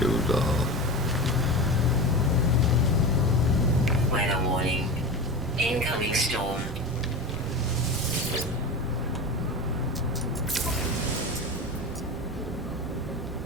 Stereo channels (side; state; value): both; normal; correlation 0.27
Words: Weather warning. Incoming storm.